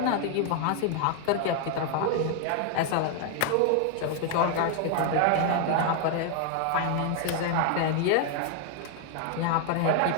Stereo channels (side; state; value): both; different; correlation 0.00